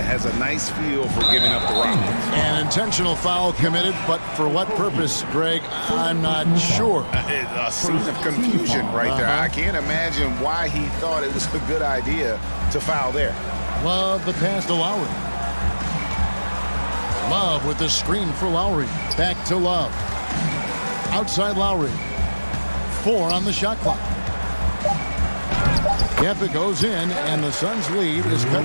has a nice feel for giving up the rock. An intentional foul committed, but for what purpose, Greg, I'm not sure. A scene of confusion right there. I can't imagine why he thought it was a good idea to foul there. Love the pass to Lowry. Love with the screen for Lowry. Back to Love. Outside Lowry. 4 on the shot clock. Yep, it goes in, and the Suns' lead is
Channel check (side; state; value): both; inverted; correlation -1.00